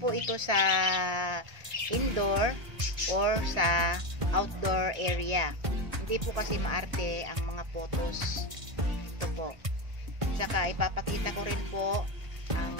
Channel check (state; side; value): late; left; 1.5 ms